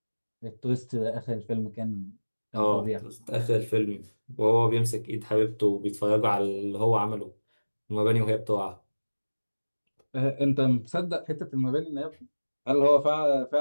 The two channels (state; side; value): inverted; both; correlation -1.00